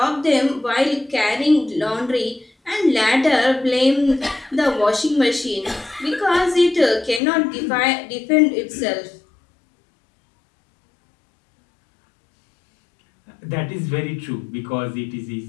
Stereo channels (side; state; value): right; drops out; at 7.2 s